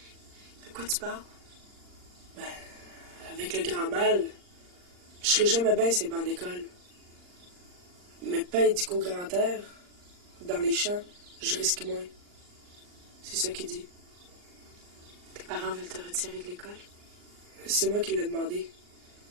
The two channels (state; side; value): late; left; 39 ms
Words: De quoi tu parles? Ben, avec le grand mal, je serai jamais bien ces bancs d'école. Mais pas dit qu'au grand air, dans les champs, je risque moins. C'est ça qu'il dit. Tes parents veulent te retirer de l'école? C'est moi qui l'ai demandé.